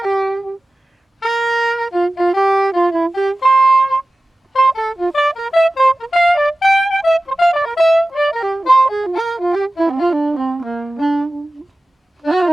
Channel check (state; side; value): normal; both; correlation 0.96